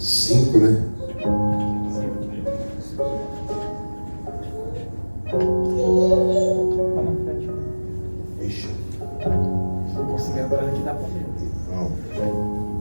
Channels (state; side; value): inverted; both; correlation -1.00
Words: né? Ixi. Não.